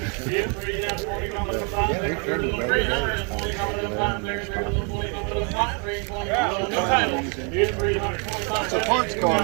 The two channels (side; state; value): left; quieter; 36.6 dB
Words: It's a parts car.